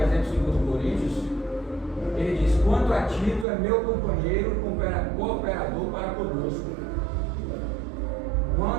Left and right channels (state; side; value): drops out; left; at 3.5 s